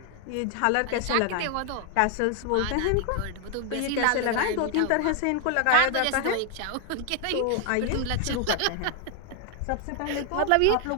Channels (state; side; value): different; both; correlation 0.00